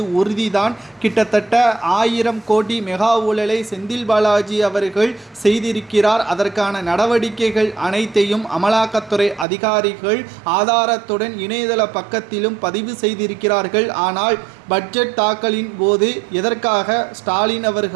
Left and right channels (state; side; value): drops out; left; at 9.5 s